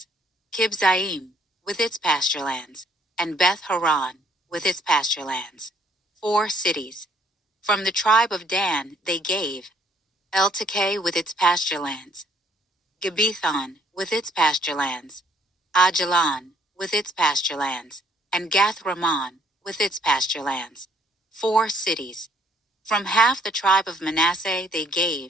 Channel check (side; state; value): both; normal; correlation 0.65